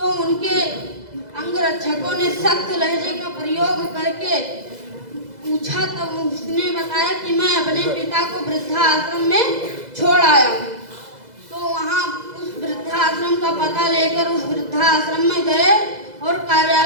उनके अंगरक्षकों ने सख्त लहजे का प्रयोग करके पूछा। तब उसने बताया कि मैं अपने पिता को वृद्धाश्रम में छोड़ आया हूँ। तो वहाँ उस वृद्धाश्रम का पता लेकर उस वृद्धाश्रम में गए और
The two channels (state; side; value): late; left; 2.0 ms